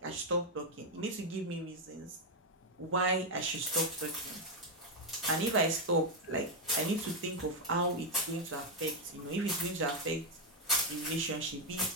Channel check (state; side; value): normal; both; correlation 0.03